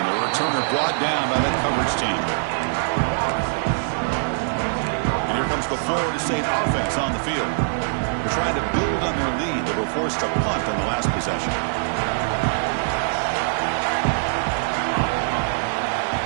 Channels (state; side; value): silent; left; 63 dB below the other